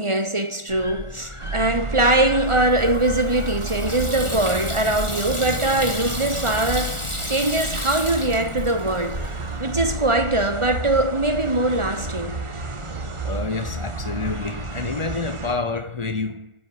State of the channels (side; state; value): left; late; 1.4 ms